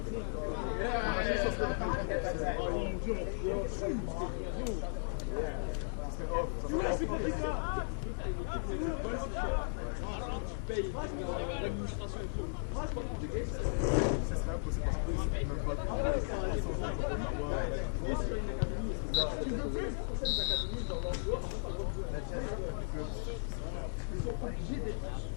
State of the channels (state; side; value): silent; right; digital silence